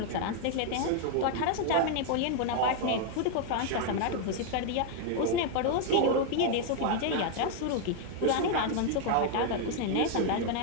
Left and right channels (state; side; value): different; both; correlation 0.00